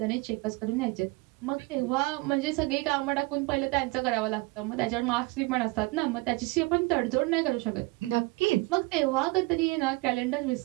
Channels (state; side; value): quieter; left; 23.8 dB